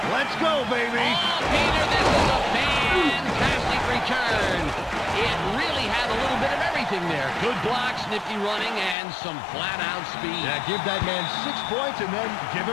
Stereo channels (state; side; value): drops out; right; at 9.0 s